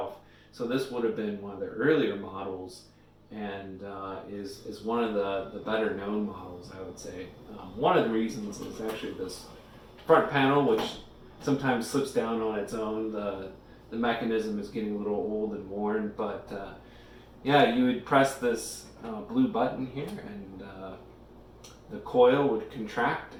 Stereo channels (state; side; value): identical; both; correlation 1.00